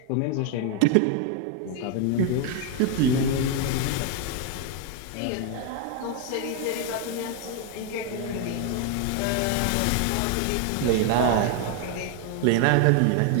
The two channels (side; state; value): both; different; correlation 0.01